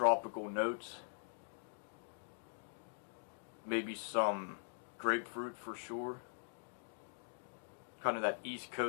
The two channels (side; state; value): right; silent; digital silence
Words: notes. Maybe some grapefruit for sure. Kind of that East